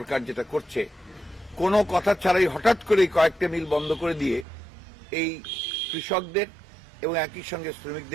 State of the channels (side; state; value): left; drops out; at 4.5 s